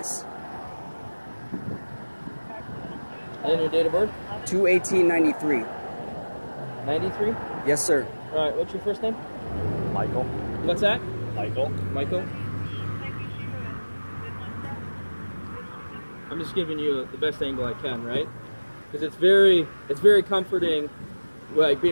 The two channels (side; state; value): both; inverted; correlation -1.00